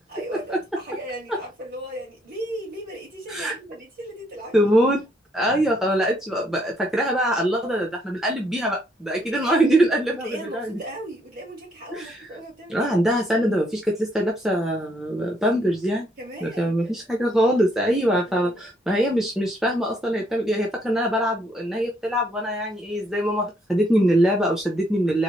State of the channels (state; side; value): normal; both; correlation 0.71